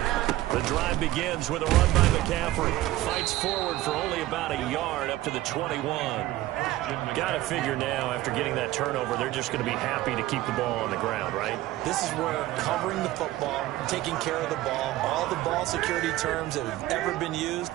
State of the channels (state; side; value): quieter; left; 16.1 dB